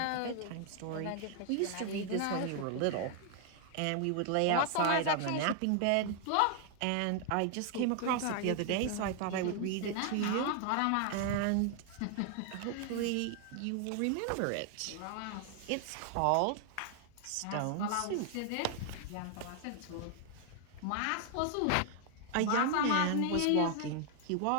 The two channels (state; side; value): different; both; correlation 0.00